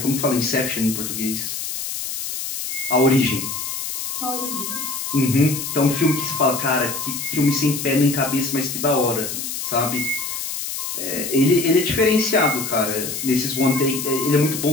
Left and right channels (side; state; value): left; noise; hiss, 5 dB below the sound